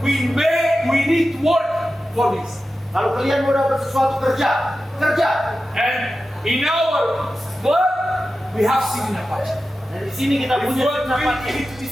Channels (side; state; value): both; normal; correlation 0.93